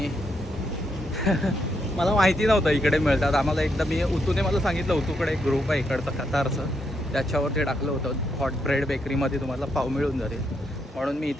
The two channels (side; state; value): both; normal; correlation 0.79